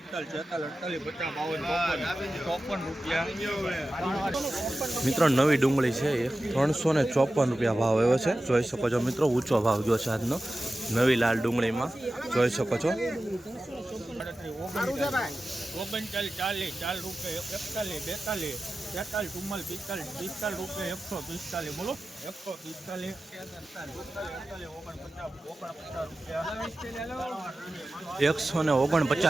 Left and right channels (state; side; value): normal; both; correlation 0.94